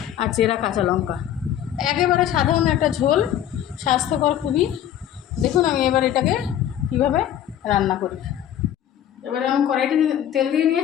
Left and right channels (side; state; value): right; quieter; 10.8 dB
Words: আর চেরা কাঁচা লঙ্কা। একেবারে সাধারণ একটা ঝোল, স্বাস্থ্যকর খুবই। দেখুন আমি এবার এটাকে কীভাবে রান্না করি। এবারে আমি কড়াইতে তেল দিয়ে